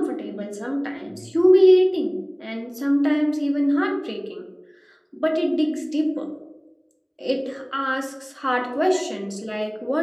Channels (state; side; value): identical; both; correlation 1.00